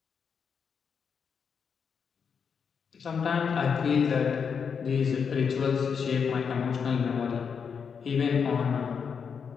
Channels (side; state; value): right; quieter; 6.4 dB